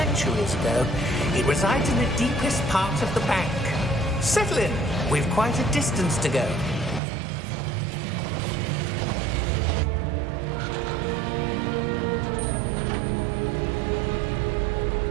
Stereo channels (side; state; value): left; drops out; at 7.0 s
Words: ago. It resides in the deepest part of the bank. Settle in. We've quite a distance to go.